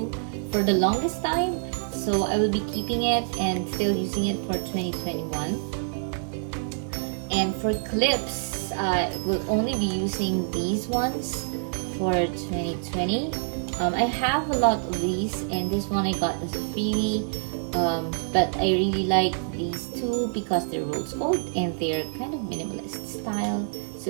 for the longest time. So I will be keeping it and still using it for 2021. And for clips, I will only be using these ones for 2020. I have a lot of these, and this one I got as a freebie. But I really like these two because they're rose gold and they're kind of minimalist style. So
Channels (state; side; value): silent; left; 61 dB below the other